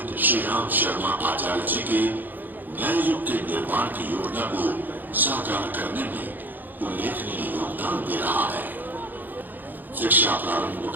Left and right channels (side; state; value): left; late; 0.087 ms